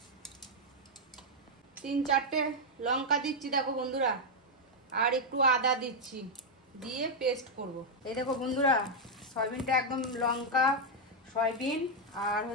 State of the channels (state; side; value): normal; both; correlation -0.01